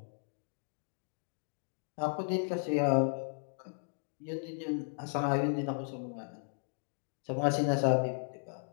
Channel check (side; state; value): right; silent; digital silence